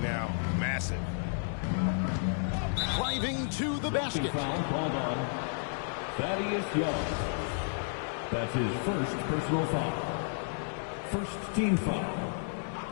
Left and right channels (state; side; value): silent; right; 56 dB below the other